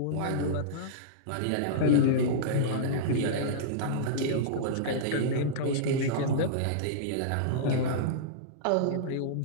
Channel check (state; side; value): different; both; correlation -0.03